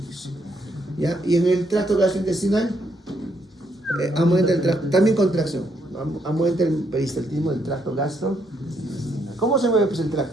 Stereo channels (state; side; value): normal; both; correlation 0.74